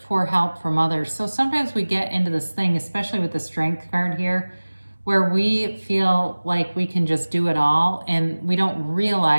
help from others. So sometimes we get into this thing, especially with the strength card here, where we feel like we can just do it all, and we don't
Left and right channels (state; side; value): inverted; both; correlation -1.00